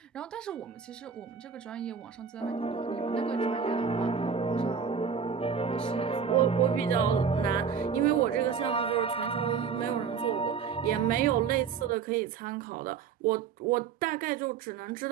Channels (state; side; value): quieter; left; 6.6 dB